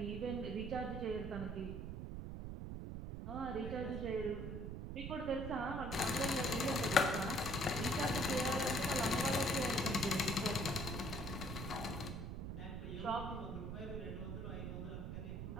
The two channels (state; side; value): noise; right; rumble, 5 dB below the sound